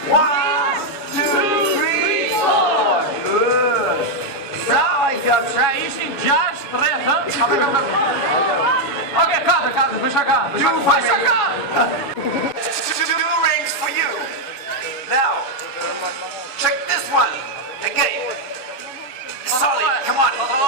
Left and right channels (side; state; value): right; late; 7.1 ms